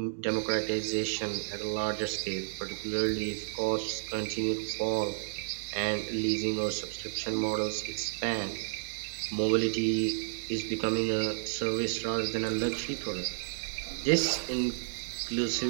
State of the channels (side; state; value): left; silent; digital silence